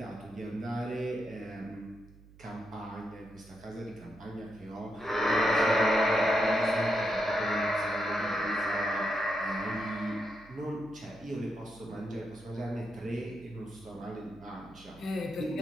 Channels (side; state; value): right; noise; hum, 22 dB below the sound